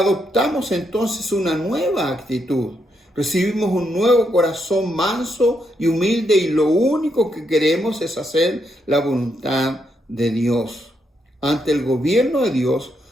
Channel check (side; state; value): both; normal; correlation 0.79